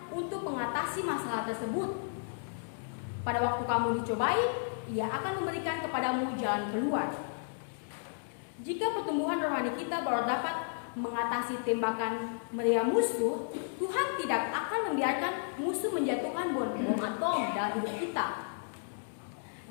untuk mengatasi masalah tersebut. Pada waktu kamu dicobai, Ia akan memberikan kepadamu jalan keluar. Jika pertumbuhan rohani kita baru dapat mengatasi tembakan meriam musuh, Tuhan tidak akan membiarkan musuh menjatuhkan bom atom dalam hidup kita.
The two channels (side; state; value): right; silent; digital silence